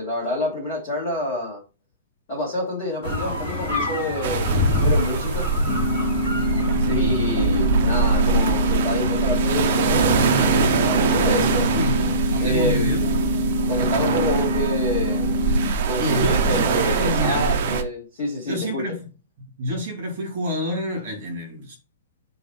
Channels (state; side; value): inverted; both; correlation -0.38